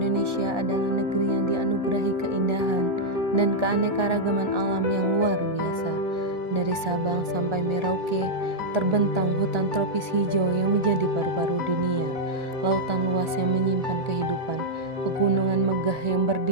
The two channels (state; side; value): late; left; 1.4 ms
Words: adalah negeri yang dianugerahi keindahan dan keanekaragaman alam yang luar biasa. Dari Sabang sampai Merauke, terbentang hutan tropis hijau yang menjadi paru-paru dunia, lautan luas yang menyimpan kehidupan, pegunungan megah yang